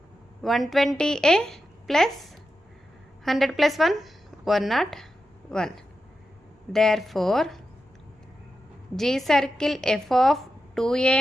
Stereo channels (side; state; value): both; normal; correlation 0.90